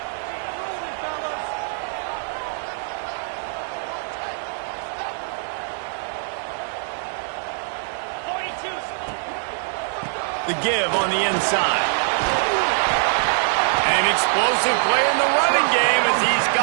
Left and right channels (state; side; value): silent; left; digital silence